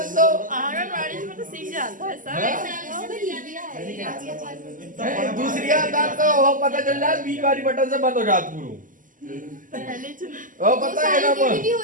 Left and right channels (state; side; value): late; left; 0.38 ms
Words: दो। आंगनवाड़ी में तो सीख जाता है सब। दूसरी आता तो वो पता चल जाए 20 बारी बटन से बंद हो जात पूरा। वो पता है ना वो होते